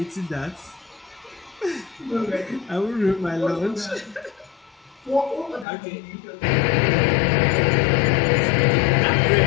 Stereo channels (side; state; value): right; drops out; at 5.7 s